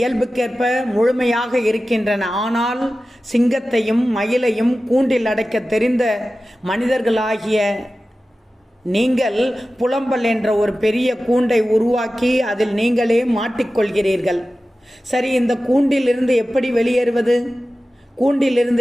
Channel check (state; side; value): normal; both; correlation 0.95